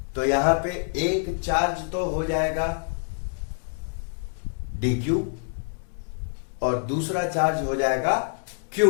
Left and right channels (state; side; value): silent; right; digital silence